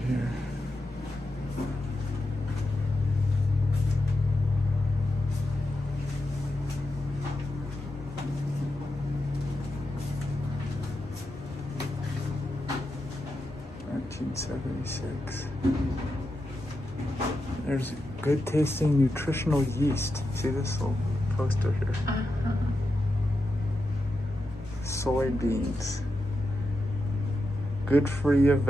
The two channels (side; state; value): both; normal; correlation 0.88